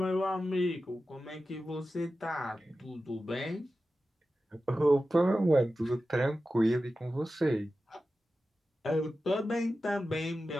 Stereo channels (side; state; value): both; normal; correlation 0.93